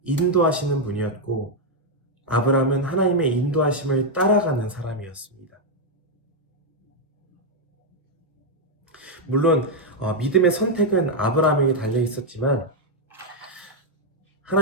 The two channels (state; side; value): normal; both; correlation -0.01